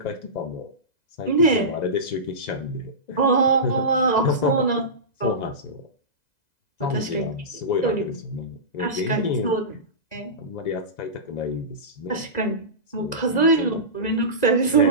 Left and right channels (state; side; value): late; right; 2.0 ms